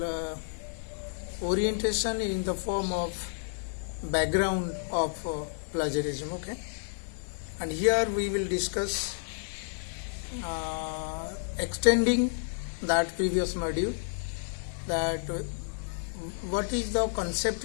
orientation in the form of background of plagiarism. Okay, and here we will discuss extending that previous module, that what is the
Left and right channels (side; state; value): right; silent; digital silence